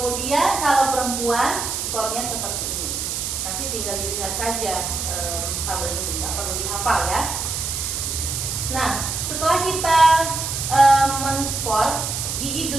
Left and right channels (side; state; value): right; noise; hiss, 3 dB below the sound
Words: kalau perempuan skornya seperti ini. Nanti tinggal dilihat saja tabel ini, nggak perlu dihafal, ya. Nah, setelah kita men-skor